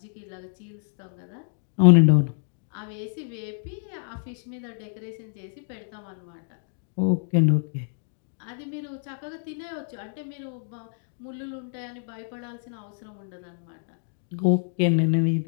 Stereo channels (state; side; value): silent; right; digital silence